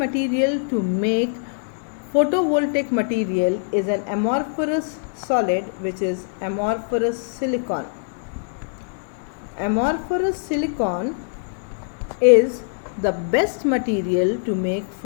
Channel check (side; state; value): right; silent; digital silence